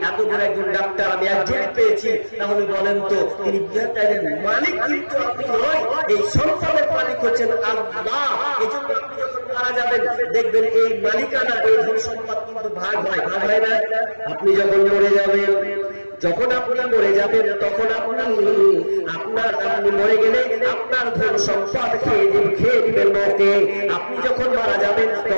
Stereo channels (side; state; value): both; inverted; correlation -1.00